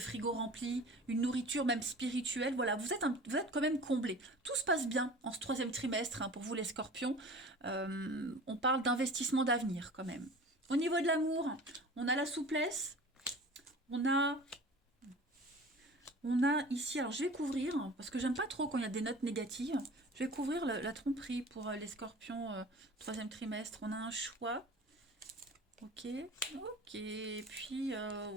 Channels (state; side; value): normal; both; correlation 0.40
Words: rempli, une nourriture même spirituelle, voilà, vous êtes quand même comblés. Tout se passe bien en ce troisième trimestre, hein, pour vous les scorpions. On parle d'investissement d'avenir quand même. Au niveau de l'amour, on a la souplesse, on a ici, alors je vais couvrir, parce que j'aime pas trop quand il y a des notes négatives, je vais couvrir la tromperie pour les scorpions troisième trimestre. On a un choix. Ok, et puis,